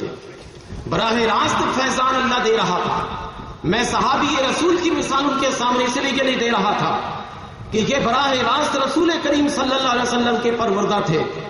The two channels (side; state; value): both; identical; correlation 1.00